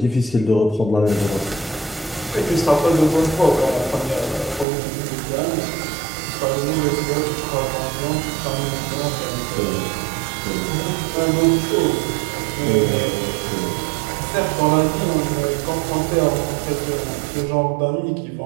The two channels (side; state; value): left; drops out; at 4.7 s